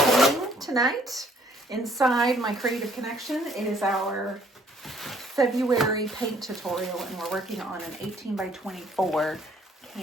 tonight inside my Creative Connection. It is our February paint tutorial, and we're working on an 18 by 24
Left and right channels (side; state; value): both; normal; correlation 0.62